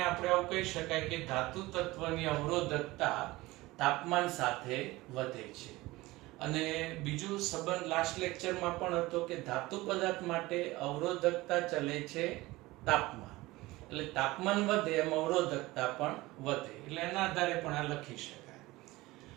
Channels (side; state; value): left; quieter; 19.8 dB